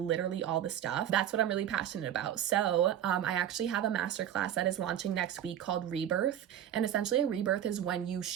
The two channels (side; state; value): left; quieter; 10.5 dB